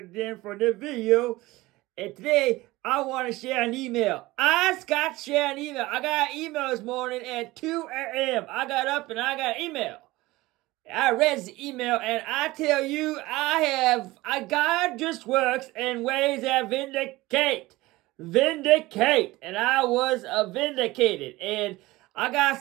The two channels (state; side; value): quieter; left; 19.5 dB